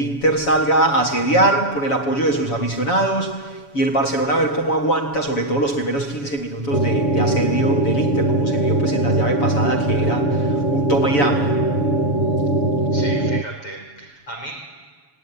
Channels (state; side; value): late; right; 7.1 ms